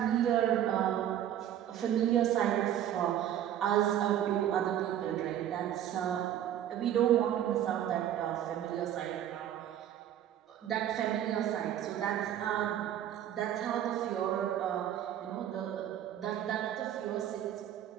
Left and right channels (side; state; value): left; quieter; 11.0 dB